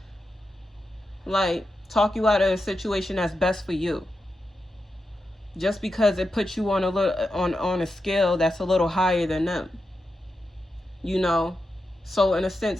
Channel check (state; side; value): normal; both; correlation 0.89